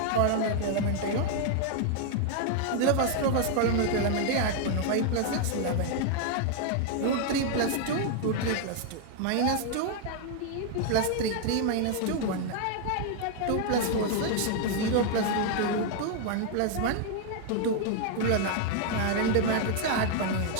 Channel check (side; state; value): both; different; correlation 0.00